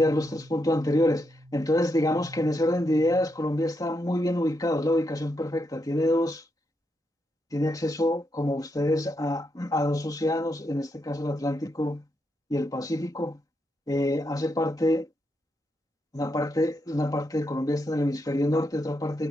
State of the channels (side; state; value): both; normal; correlation 0.81